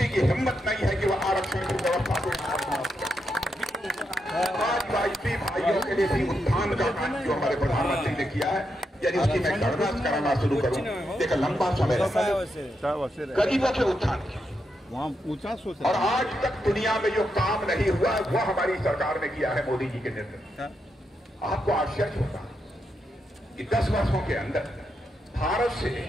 की हिम्मत नहीं है कि वह आरक्षण की व्यवस्था को आदिवासी भाइयों के लिए भी उत्थान का काम जो हमारे प्रधानमंत्री ने किया है, यदि उसकी मैं गणना कराना शुरू करूं, देखो लंबा समय गरीबों के उत्थान की, और आज तक दुनिया में जो काम नहीं हुआ वह हमारी सरकार ने किया है मोदी जी के नेतृत्व। आपको आश्चर्य होगा कि 10 वर्षों के अंदर भारत से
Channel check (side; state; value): both; normal; correlation 0.83